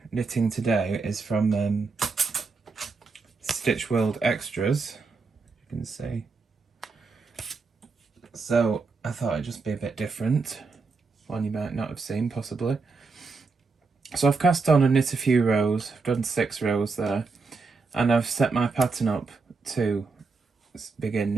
knitting today is from Stitch World Extras, you can see. So I thought it'd just be a bit different, one you might not have seen possibly. So I've cast on and knit a few rows, I've done 6 rows there, and I've set my pattern up to begin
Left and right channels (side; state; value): left; quieter; 4.4 dB